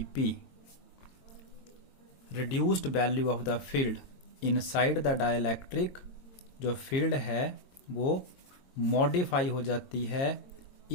P. Reduced value of the field inside the dielectric, जो फील्ड है वो मॉडिफाई हो जाती है,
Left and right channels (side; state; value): right; late; 22 ms